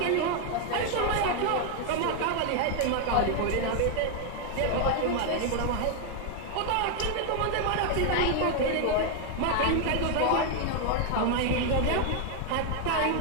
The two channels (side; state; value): both; different; correlation 0.01